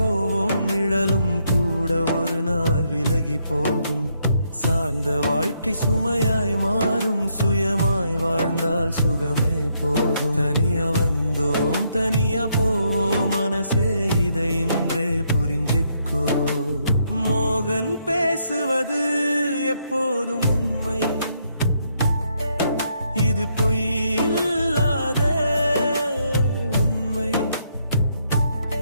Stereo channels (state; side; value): inverted; both; correlation -0.75